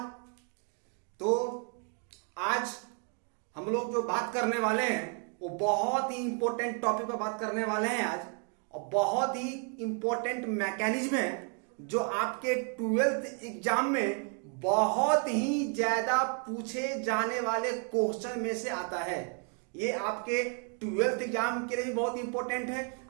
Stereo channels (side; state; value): left; quieter; 39.3 dB